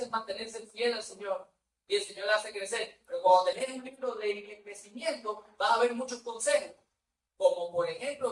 es mantenerse fiel al Señor. Y el Señor la hace crecer. Pero cuando tenés un libro de crecimiento, vas a ver muchos consejos. Como por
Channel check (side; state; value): both; identical; correlation 1.00